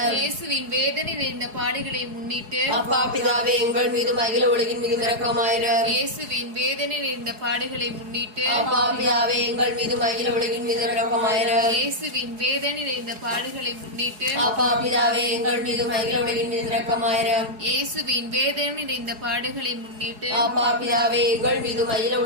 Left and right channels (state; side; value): late; left; 4.7 ms